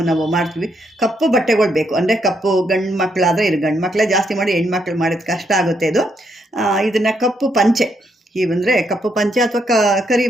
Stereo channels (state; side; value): normal; both; correlation 0.76